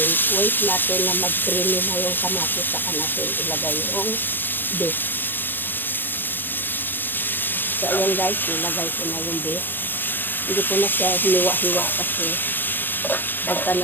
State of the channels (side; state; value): right; late; 0.094 ms